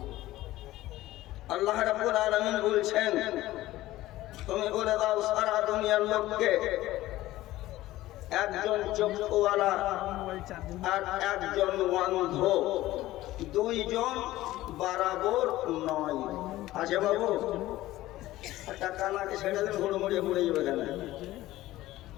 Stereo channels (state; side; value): quieter; right; 16.2 dB